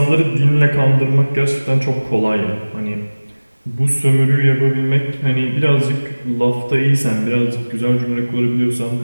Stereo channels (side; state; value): both; inverted; correlation -1.00